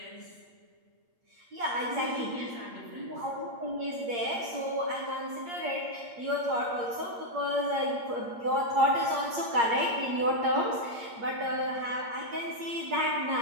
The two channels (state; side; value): late; left; 8.6 ms